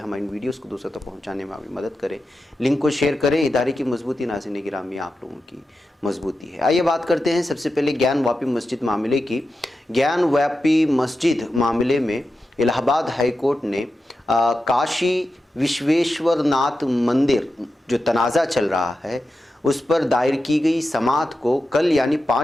ہماری ویڈیوز کو دوسروں تک پہنچانے میں ہماری مدد کریں، لنک کو شیئر کریں۔ ادارے کی مضبوطی ناظرین گرامی آپ لوگوں کی مضبوطی ہے۔ آئیے بات کرتے ہیں سب سے پہلے گیان واپی مسجد معاملے کی۔ گیان واپی مسجد معاملے میں الہ آباد ہائی کورٹ نے کاشی وشویشور ناتھ مندر جو تنازع چل رہا ہے اس پر دائر کی گئی سماعت کو کل یعنی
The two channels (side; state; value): both; normal; correlation 0.89